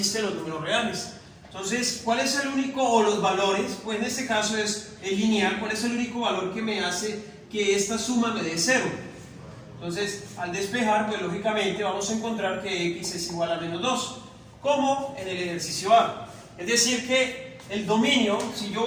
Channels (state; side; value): identical; both; correlation 1.00